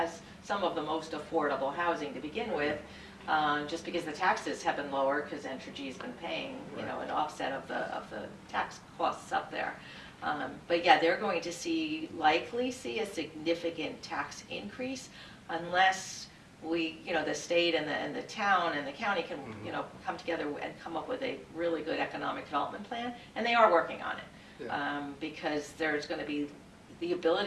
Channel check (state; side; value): identical; both; correlation 1.00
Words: some of the most affordable housing to begin with, just because the taxes have been lower, because Entergy's been paying, an offset of the tax costs up there. But yeah, they're going to likely see a significant tax increase unless we, the state and the town and the county can, come together and come up with a really good economic development plan, and they are working on it. Because there's going to be the